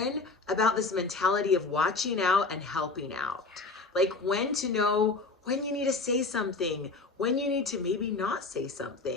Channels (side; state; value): right; quieter; 3.7 dB